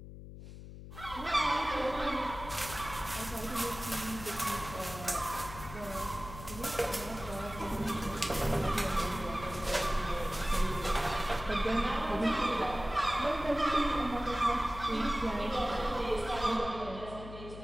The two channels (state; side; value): noise; left; hum, 13 dB below the sound